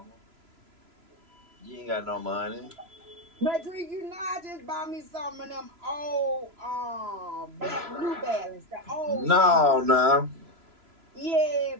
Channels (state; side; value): late; left; 3.0 ms